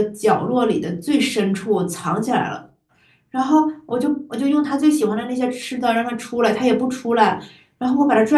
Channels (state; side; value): identical; both; correlation 1.00